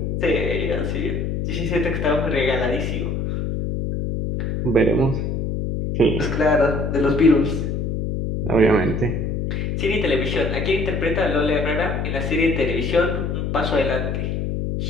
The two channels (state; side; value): noise; left; hum, 1 dB below the sound